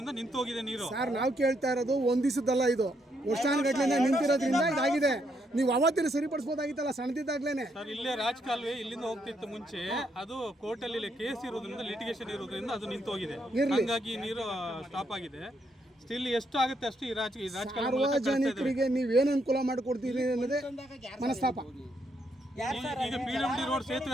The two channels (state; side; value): normal; both; correlation 0.76